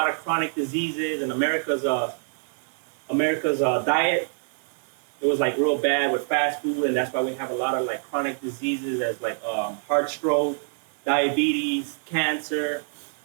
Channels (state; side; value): silent; left; digital silence